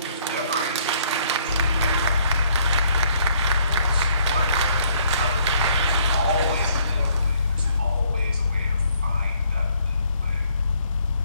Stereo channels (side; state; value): both; inverted; correlation -0.64